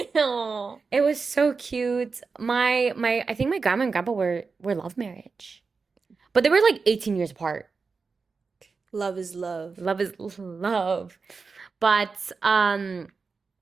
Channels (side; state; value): left; quieter; 4.7 dB